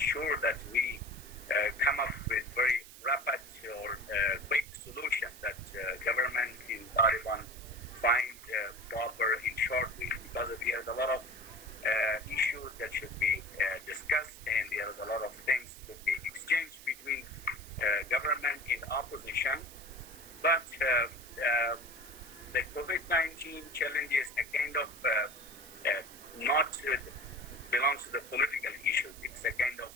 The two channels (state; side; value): noise; right; hiss, 17 dB below the sound